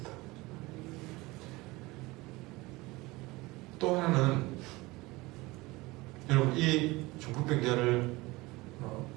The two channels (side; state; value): left; quieter; 21.7 dB